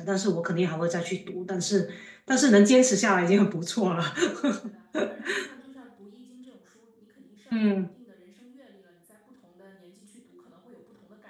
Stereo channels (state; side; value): identical; both; correlation 1.00